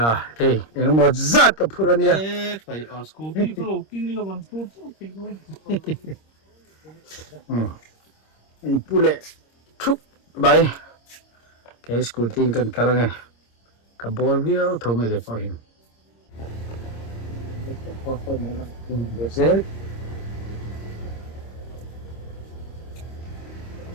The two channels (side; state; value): right; late; 26 ms